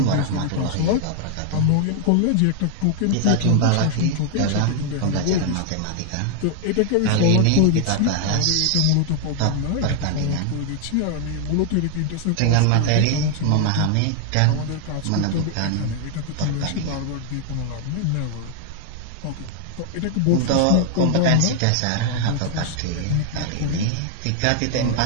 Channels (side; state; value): both; different; correlation 0.00